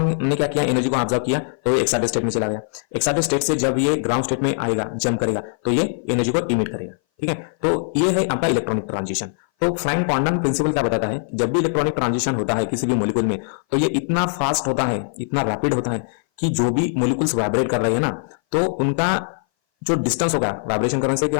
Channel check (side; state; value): right; silent; 59 dB below the other